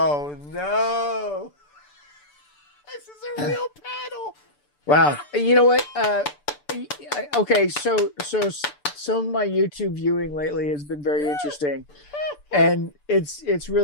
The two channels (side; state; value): right; late; 6.8 ms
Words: no. This is a real panel. Wow. You know what? Okay, so some of my YouTube viewing lately has been very interesting, and it's